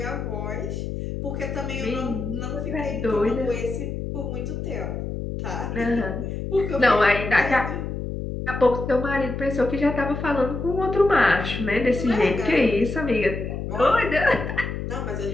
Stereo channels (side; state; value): left; noise; hum, 5 dB below the sound